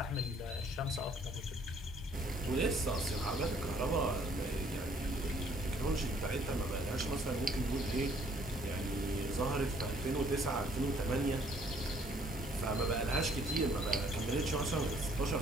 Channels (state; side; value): normal; both; correlation 0.62